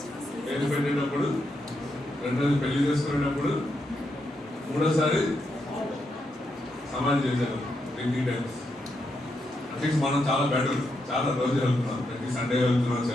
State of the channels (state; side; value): normal; both; correlation 0.82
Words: పెట్టేటప్పుడు, రెండోది పెళ్లి చేసుకునేటప్పుడు, మూడోసారి సమాధి చేశారు 3 టైమ్స్. అట్లీస్ట్ మనం చాలా బెటర్, చాలా రోజు వెళ్తున్నాం. ప్రతి సండే వెళ్తున్నాం